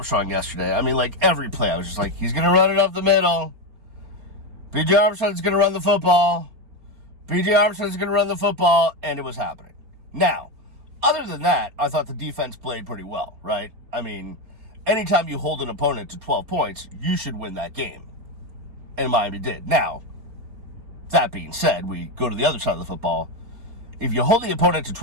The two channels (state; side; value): late; left; 4.5 ms